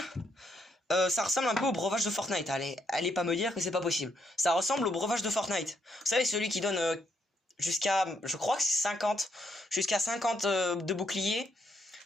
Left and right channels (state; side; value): normal; both; correlation 0.75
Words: ça ressemble un peu au breuvage de Fortnite. Allez pas me dire que c'est pas possible. Ça ressemble au breuvage de Fortnite. Vous savez, celui qui donne jusqu'à, je crois que c'est 50, jusqu'à 50 de boucliers.